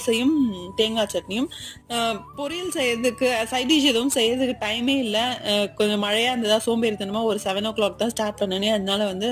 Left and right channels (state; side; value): identical; both; correlation 1.00